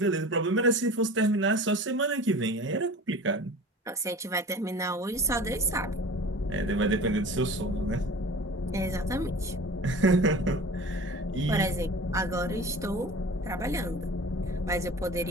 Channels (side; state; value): both; normal; correlation 0.39